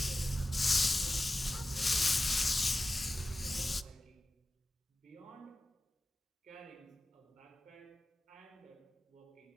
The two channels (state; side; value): normal; both; correlation 0.94